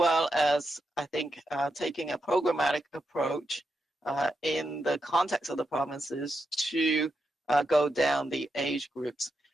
as, I think, taking a programmatic approach in the context of the provinces to go down the age groups.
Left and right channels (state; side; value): normal; both; correlation 0.85